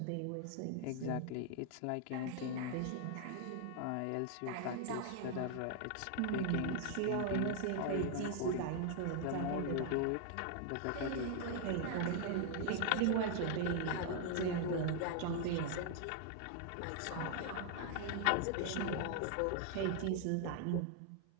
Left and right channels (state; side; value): different; both; correlation 0.00